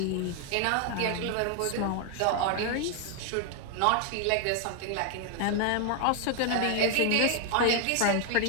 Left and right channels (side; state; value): both; different; correlation 0.00